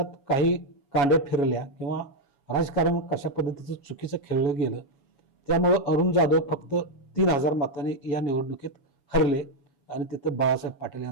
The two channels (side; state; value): right; late; 7.1 ms